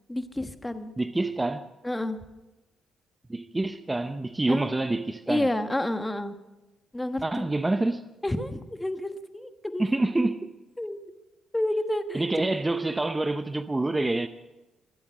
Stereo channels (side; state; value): both; normal; correlation 0.96